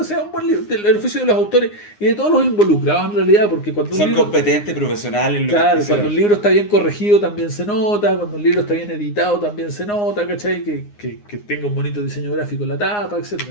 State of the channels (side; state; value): right; late; 9.7 ms